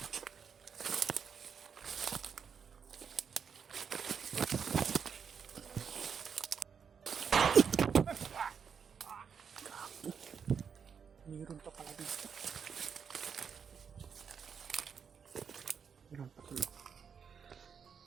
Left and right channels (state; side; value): quieter; left; 6.8 dB